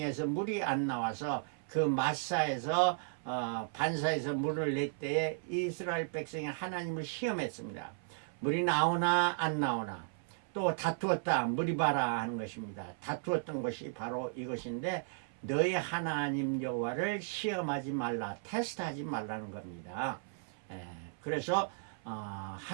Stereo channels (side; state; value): left; silent; 54 dB below the other